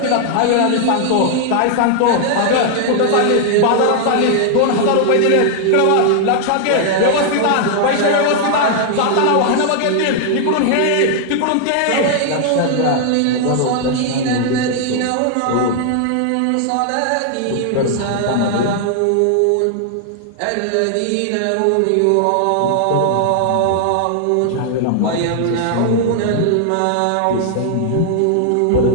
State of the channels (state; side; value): different; both; correlation 0.00